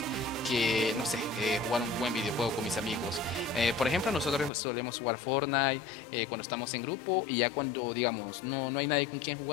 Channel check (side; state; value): right; drops out; at 4.5 s